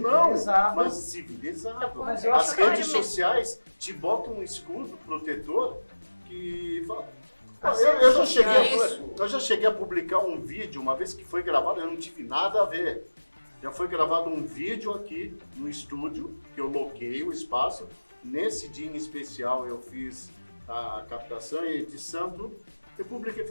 mas civilizado. Mas eu As acho redes que- sociais te botam um escudo protetor que fala. As Eu redes já sociais- eu já cheguei a publicar um vídeo, uma vez que foi gravado, eu não tive nada a ver. Já foi gravado um vídeo aqui no estúdio, que eu loquei o espaço. Nesse dia em especial eu fiz a captação e edição, tudo. Eu publiquei e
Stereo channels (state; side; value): inverted; both; correlation -1.00